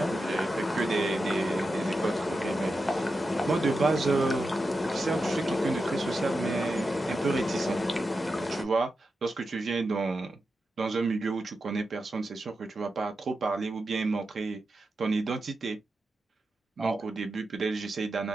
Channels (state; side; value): normal; both; correlation 0.89